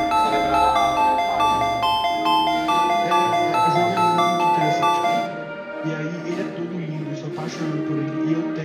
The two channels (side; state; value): both; identical; correlation 1.00